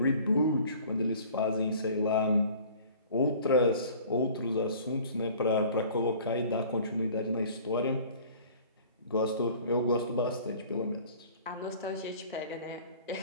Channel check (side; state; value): both; inverted; correlation -0.48